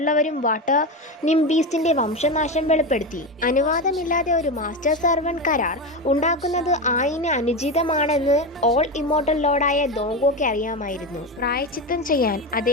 വാട്ടർ നിംബീസ്റ്റിൻ്റെ വംശനാശം വെളിപ്പെടുത്തി. അനുവാദമില്ലാതെ ഒരു മാസ്റ്റർ സർവന്റ് കരാർ ഉണ്ടാക്കുന്നത് ആയിന് അനുചിതമാണെന്ന് ഓൾ ഇമ്മോർട്ടൽ ലോർഡായ ദോങ്കോയ്ക്ക് അറിയാമായിരുന്നു. പ്രായശ്ചിത്തം ചെയ്യാൻ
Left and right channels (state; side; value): normal; both; correlation 0.17